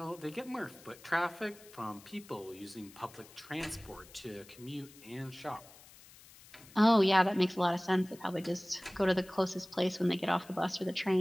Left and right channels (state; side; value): noise; left; hiss, 22 dB below the sound